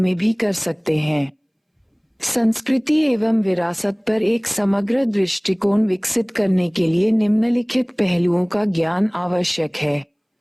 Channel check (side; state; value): both; identical; correlation 1.00